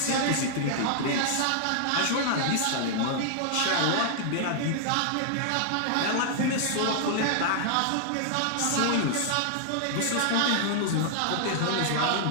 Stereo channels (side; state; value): both; different; correlation -0.01